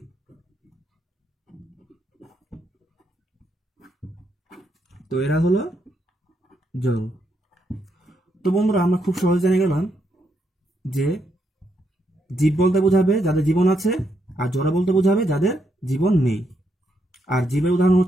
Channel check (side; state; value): both; normal; correlation 0.78